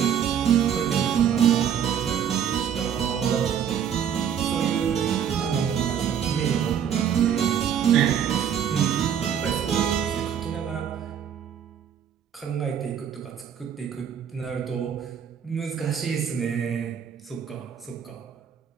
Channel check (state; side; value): quieter; left; 8.6 dB